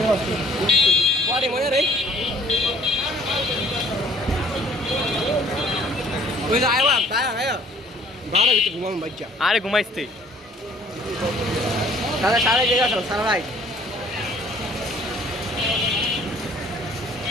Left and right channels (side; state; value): both; normal; correlation 0.56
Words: আরে ঘুমাইস তুই? সারা জায়গা সারা রাইট।